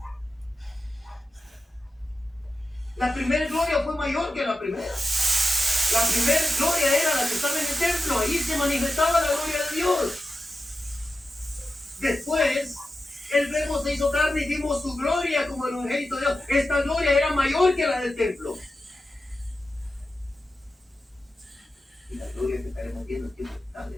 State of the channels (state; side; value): normal; both; correlation 0.92